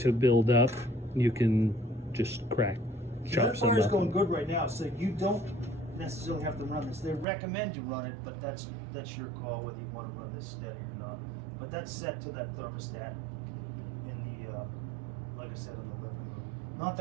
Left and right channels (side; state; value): left; drops out; at 7.2 s